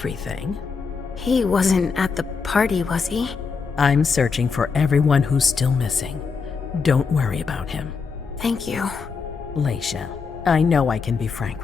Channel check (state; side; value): quieter; right; 5.2 dB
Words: He wasn't at the party, was he? I'm searching for everyone who's still missing. Don't worry about him. Thank you. Leisha, I know I can be frank